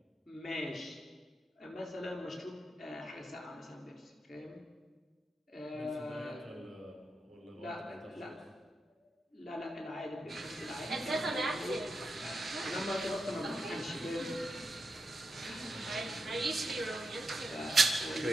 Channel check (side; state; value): both; normal; correlation 0.86